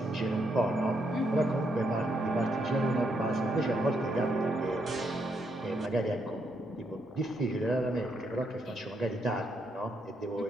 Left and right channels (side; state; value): both; normal; correlation 0.77